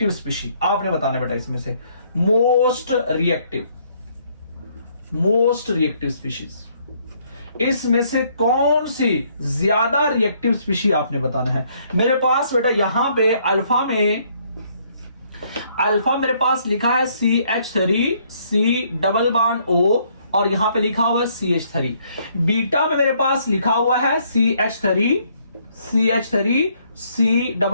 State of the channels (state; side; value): inverted; both; correlation -0.67